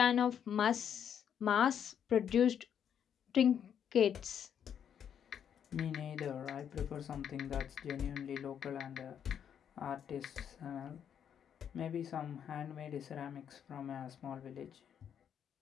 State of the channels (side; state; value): right; quieter; 8.6 dB